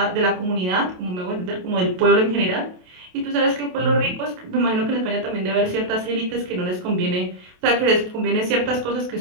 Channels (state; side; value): late; left; 28 ms